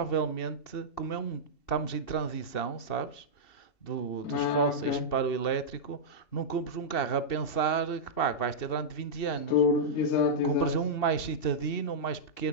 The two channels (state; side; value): late; right; 2.7 ms